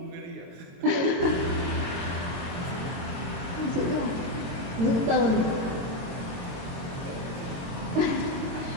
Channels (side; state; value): left; late; 22 ms